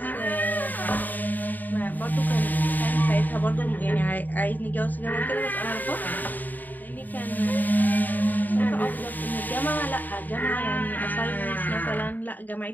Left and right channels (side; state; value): right; late; 0.086 ms